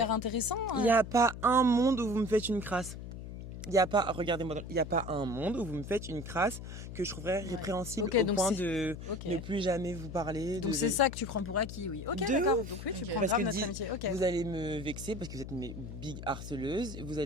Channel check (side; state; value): left; noise; hum, 10 dB below the sound